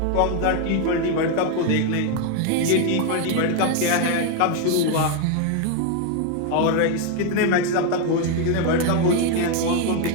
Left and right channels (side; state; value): both; different; correlation 0.01